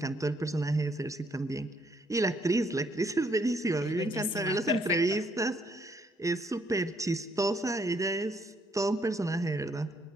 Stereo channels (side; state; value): both; normal; correlation 0.69